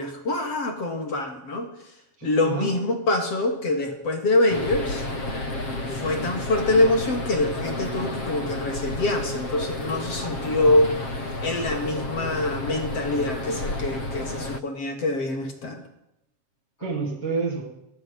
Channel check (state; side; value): late; right; 7.5 ms